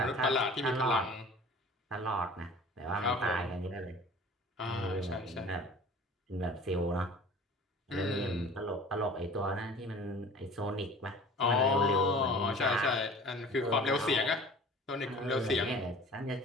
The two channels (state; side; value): normal; both; correlation 0.43